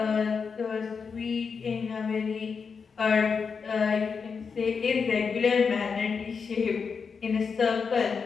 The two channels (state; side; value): quieter; right; 5.6 dB